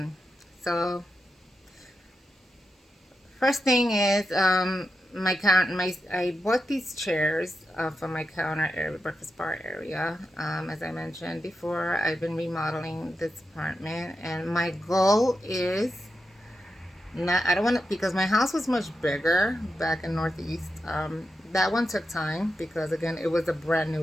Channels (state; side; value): normal; both; correlation 0.88